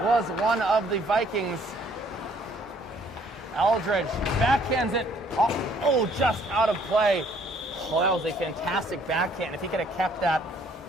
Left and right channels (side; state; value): both; normal; correlation 0.62